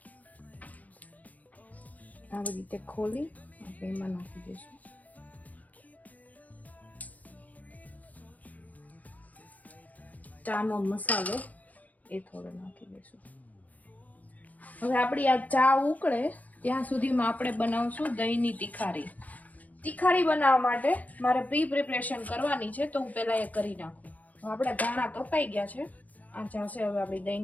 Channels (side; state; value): right; late; 0.077 ms